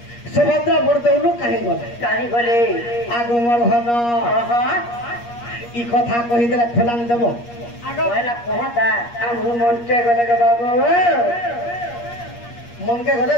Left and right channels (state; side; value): late; right; 8.5 ms